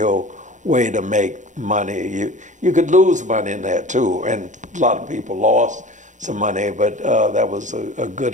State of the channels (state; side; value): late; left; 0.36 ms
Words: way to make money. You could lose money in that too, and a lot of people lost some money, but that was a